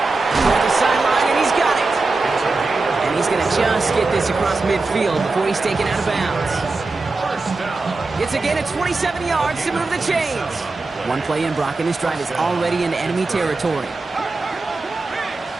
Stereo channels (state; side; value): quieter; left; 3.6 dB